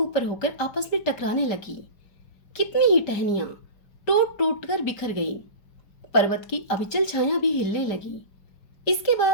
होकर आपस में टकराने लगी। कितनी ही टहनियां टूट टूट कर बिखर गई। पर्वत की अविचल छाया भी हिलने लगी। इसके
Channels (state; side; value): late; right; 5.0 ms